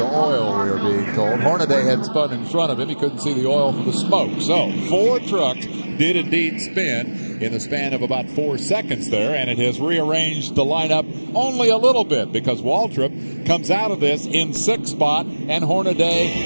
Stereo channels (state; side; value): inverted; both; correlation -1.00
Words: oil, we were being told. Hornaday had spun in front of him. He couldn't see the oil for the smoke. So 4 trucks did indeed spin in the span of about 4 seconds there, and it has rearranged the lineup only a little bit because Waltrip comes out of this in 6th spot and Hornaday